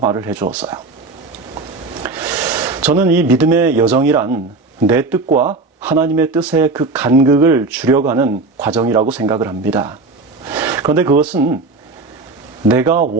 해주었어요. 저는 이 믿음의 여정이란 내 뜻과 하나님의 뜻의 그 간극을 줄여가는 과정이라고 생각을 합니다. 그런데 그것은 내가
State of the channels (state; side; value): quieter; left; 3.6 dB